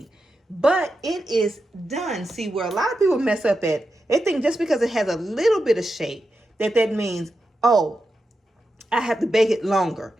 But it is done. See, where a lot of people mess up at, they think just because it has a little bit of shape, that means, oh, I have to bake it longer.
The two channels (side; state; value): both; normal; correlation 0.89